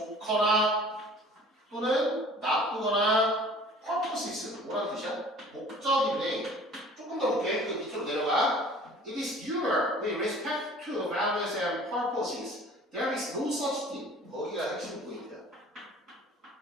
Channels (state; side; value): normal; both; correlation 0.48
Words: 또는 나쁘거나 purposes. 뭐라는 뜻이야? 목적인데 조금 더 볼게. 그 밑으로 내려가. It is your with respect to values and purposes. There is no such thing. 거기가 핵심 포인트야.